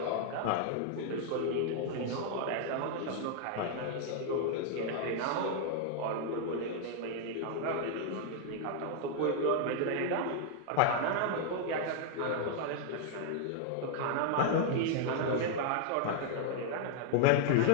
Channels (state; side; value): different; both; correlation 0.00